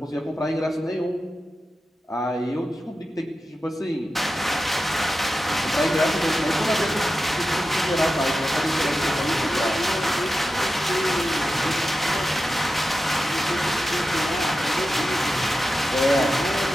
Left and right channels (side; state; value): both; normal; correlation 0.92